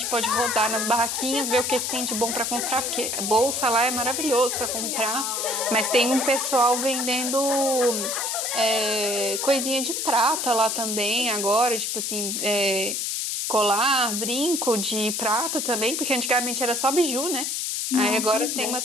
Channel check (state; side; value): noise; left; hiss, 1 dB below the sound